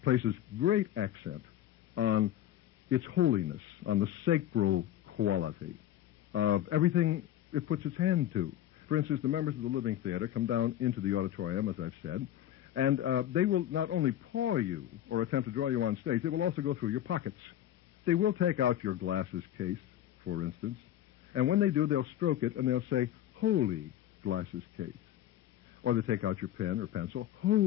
places great accent on its holiness, on the sacral quality of everything it puts its hand to. For instance, the members of the living theater come down into the auditorium, as I've said, and they will not only paw you or attempt to draw you on stage, they will also go through your pockets. They will take out your glasses case, for instance, and when they do, they'll stroke it and they'll say, "Holy glasses case." Or they take out your pen or pencil,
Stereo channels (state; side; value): quieter; right; 12.0 dB